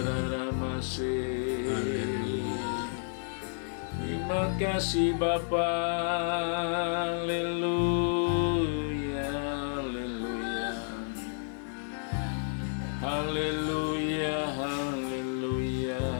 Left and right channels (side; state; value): right; silent; digital silence